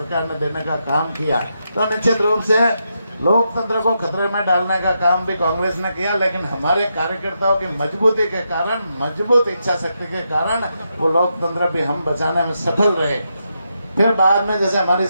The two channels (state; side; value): inverted; both; correlation -0.83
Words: ने देने का काम किया। तो निश्चित रूप से लोकतंत्र को खतरे में डालने का काम भी कांग्रेस ने किया, लेकिन हमारे कार्यकर्ताओं की मजबूती के कारण, मजबूत इच्छा शक्ति के कारण वो लोकतंत्र भी हम बचाने में सफल रहे। फिर बाद में जैसे हमारी